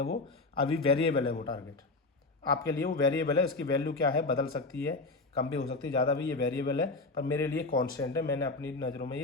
वो अभी वेरिएबल है। वो टारगेट आपके लिए वो वेरिएबल है, इसकी वैल्यू क्या है बदल सकती है, कम भी हो सकती है, ज़्यादा भी। ये वेरिएबल है पर मेरे लिए कांस्टेंट है, मैंने अपनी नज़रों में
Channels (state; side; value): quieter; right; 3.4 dB